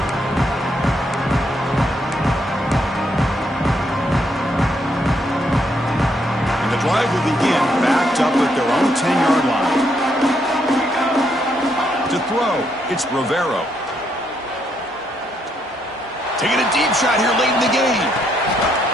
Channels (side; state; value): both; normal; correlation 0.75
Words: Drive will begin backed up at their own 10-yard line. To throw, it's Rivero. Taking a deep shot here late in the game.